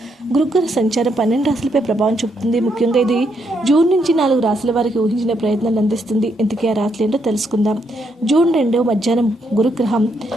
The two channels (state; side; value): normal; both; correlation 0.76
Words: గురుగ్రహ సంచారం 12 రాశులపై ప్రభావం చూపుతుంది. ముఖ్యంగా ఇది జూన్ నుంచి 4 రాశుల వారికి ఊహించిన ప్రయత్నాలు అందిస్తుంది. ఇంతకీ ఆ రాశులు ఏంటో తెలుసుకుందాం. జూన్ 2 మధ్యాహ్నం గురుగ్రహం